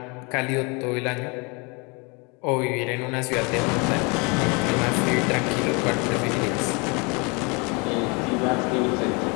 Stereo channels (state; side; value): quieter; right; 30.1 dB